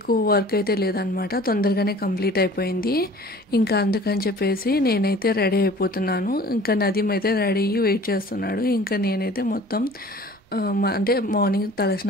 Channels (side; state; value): both; normal; correlation 0.47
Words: వర్క్ అయితే లేదనమాట తొందరగానే కంప్లీట్ అయిపోయింది ఇంకా అందుకని చెప్పేసి నేనైతే రెడీ అయిపోతున్నాను ఇంకా నదీం అయితే రెడీ అయ్యి వెయిట్ చేస్తున్నాడు ఇంకా నేనైతే మొత్తం అంటే మార్నింగ్